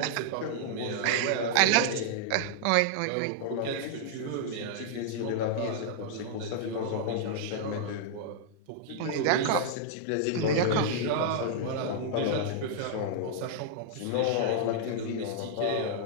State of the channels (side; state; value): both; different; correlation -0.01